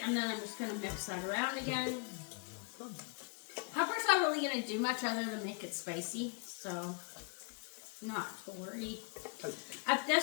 and then I'm just going to mix that around again. Pepper's not really going to do much other than make it spicy, so not to worry. At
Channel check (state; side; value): quieter; right; 37.6 dB